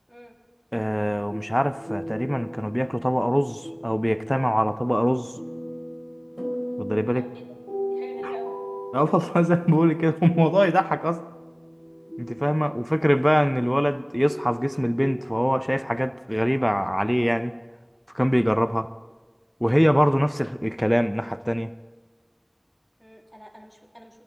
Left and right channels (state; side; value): identical; both; correlation 1.00